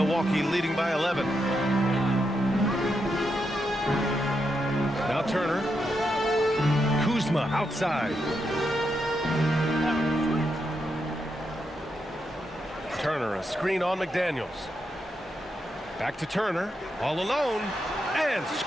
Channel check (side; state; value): both; normal; correlation 0.83